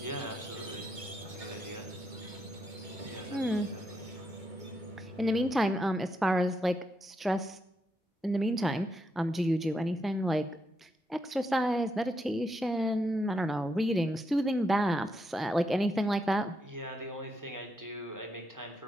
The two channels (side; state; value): both; normal; correlation 0.81